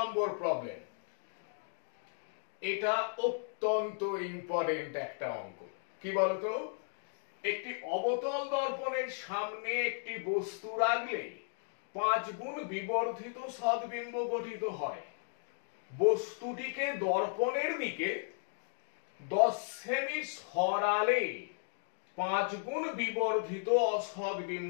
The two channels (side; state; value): right; silent; digital silence